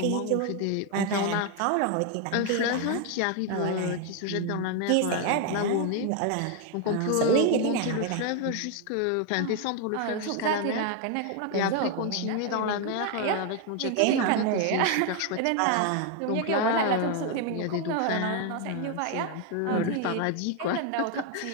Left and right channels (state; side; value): different; both; correlation 0.01